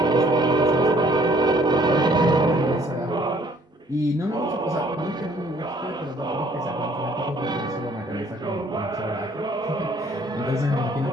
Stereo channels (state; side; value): normal; both; correlation 0.61